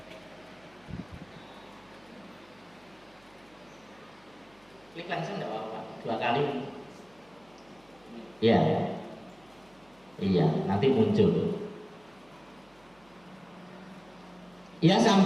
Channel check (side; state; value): right; noise; hum, 30 dB below the sound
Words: Klik langsung enggak apa-apa, 2 kali. Ya, iya, nanti muncul. Ya,